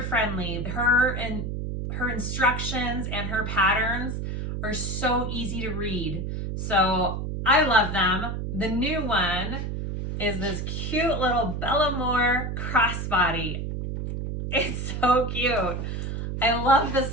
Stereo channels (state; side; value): noise; right; hum, 4 dB below the sound